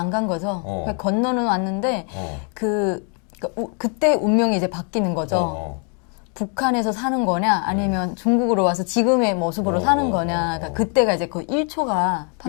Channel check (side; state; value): right; quieter; 39.2 dB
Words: 간 거죠. 어. 그러니까 건너는 왔는데 어. 그때 운명이 이제 바뀌는 거죠. 어. 북한에서 사는 거냐 아니면 중국으로 와서 지금의 모습으로 사는 거냐. 그러니까 그때가 이제 그 1초가